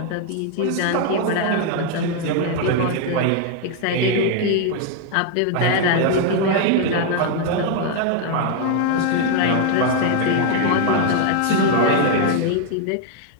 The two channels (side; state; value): both; different; correlation 0.00